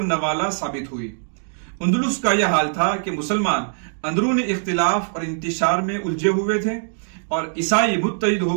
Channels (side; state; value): left; silent; digital silence